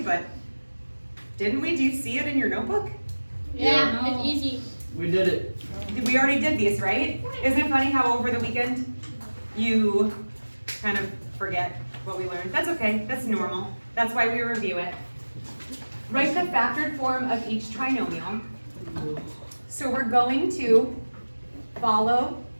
but didn't we? Do you see it in your notebook? Yeah, it's easy. We did it. We already did these, right? Isn't it funny how over the weekend you kind of forget what we learned? That's okay, that's normal. That's why we review it. Write the factored form of each trinomial. So we're going to follow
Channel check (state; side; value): inverted; both; correlation -1.00